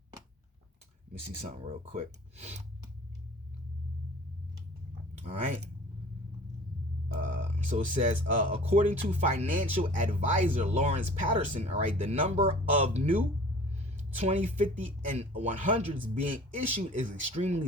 Let me see something real quick. All right. So it says, according to financial advisor Lawrence Patterson, all right, the number of new 20, 50, and 100s being issued is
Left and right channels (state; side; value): normal; both; correlation 0.46